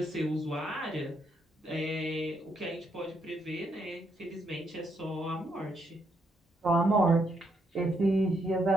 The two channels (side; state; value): both; normal; correlation 0.76